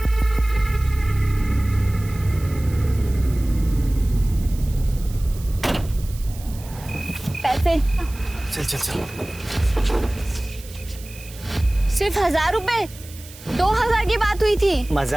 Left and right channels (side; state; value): right; noise; hiss, 19 dB below the sound